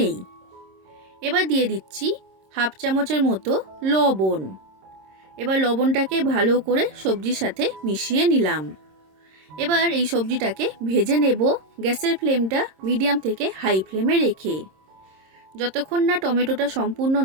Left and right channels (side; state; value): left; late; 26 ms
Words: এবার দিয়ে দিচ্ছি 1/2 চামচের মতো লবণ। এবার লবণটাকে ভালো করে সবজির সাথে মিশিয়ে নিলাম। এবার এই সবজিটাকে ভেজে নেব গ্যাসের ফ্লেমটা মিডিয়াম থেকে হাই ফ্লেমে রেখে। যতক্ষণ না টমেটোটা সম্পূর্ণ